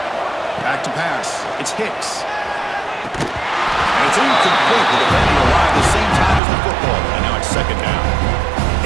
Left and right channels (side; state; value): left; drops out; at 6.4 s